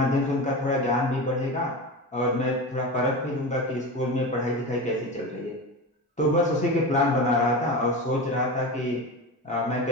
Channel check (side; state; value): both; normal; correlation 0.25